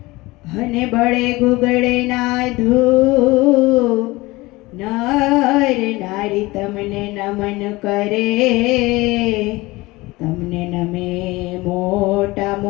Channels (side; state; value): right; quieter; 21.2 dB